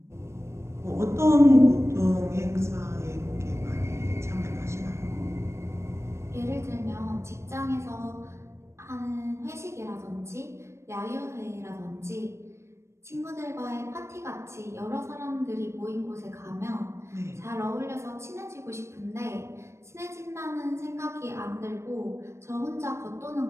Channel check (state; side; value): late; left; 0.13 ms